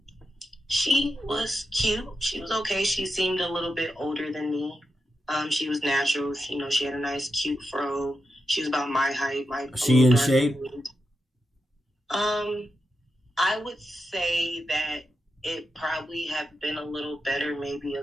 She was cute. She was okay. She seemed a little bit older than me. She was natural. She had a nice, cute fro. She was about my height. She in shape? I would say that it probably have been a little better maybe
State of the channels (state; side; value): normal; both; correlation 0.87